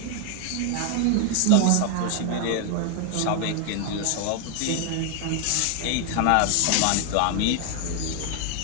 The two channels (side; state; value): both; different; correlation 0.01